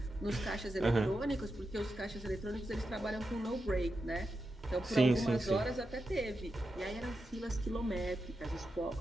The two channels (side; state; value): both; normal; correlation 0.88